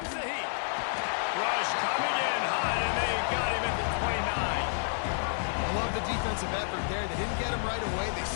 the heat. Rush coming in high, and they got him at the 29. I love the defensive effort there. They didn't get him right away. They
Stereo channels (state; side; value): silent; right; digital silence